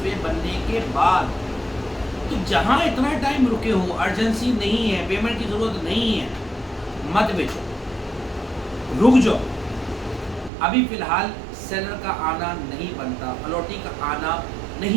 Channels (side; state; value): left; drops out; at 10.5 s